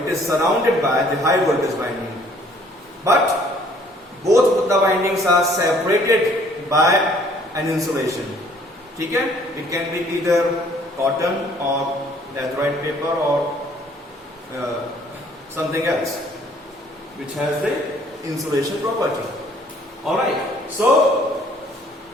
is surrounded by the high voltage winding, but both the windings are separated by an insulation, ठीक है, it can be either cotton or laterite paper or something else which has the insulation property. All right, so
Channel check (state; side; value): normal; both; correlation 0.59